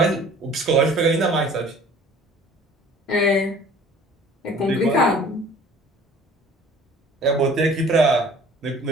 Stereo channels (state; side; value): normal; both; correlation 0.49